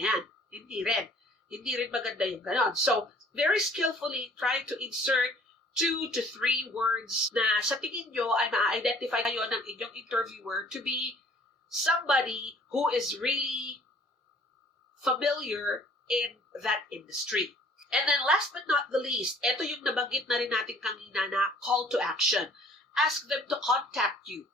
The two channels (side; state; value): both; normal; correlation 0.56